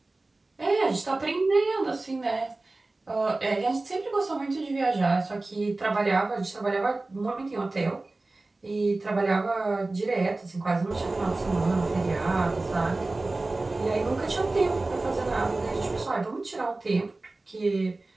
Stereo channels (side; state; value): left; quieter; 3.1 dB